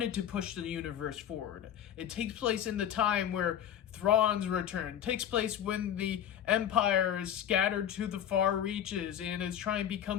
to push the universe forward. It takes place in the time where Thrawn's return. It takes place when the Empire is scattered to the far reaches and is trying to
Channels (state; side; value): quieter; right; 9.9 dB